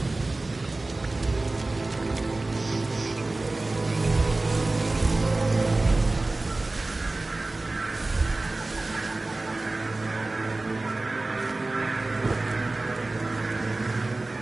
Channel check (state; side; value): quieter; left; 3.1 dB